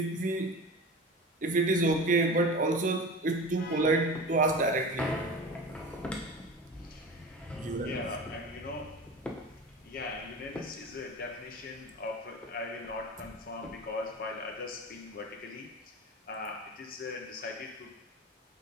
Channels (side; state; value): both; normal; correlation 0.32